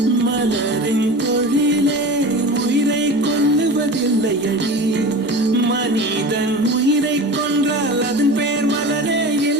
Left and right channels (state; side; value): normal; both; correlation 0.33